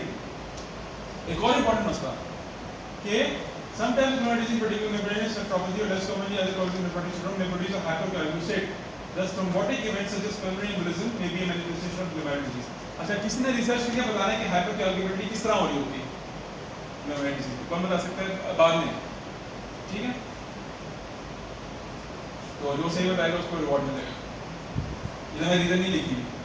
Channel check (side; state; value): both; identical; correlation 1.00